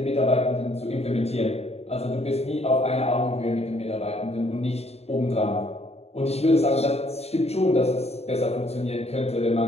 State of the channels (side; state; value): right; late; 0.30 ms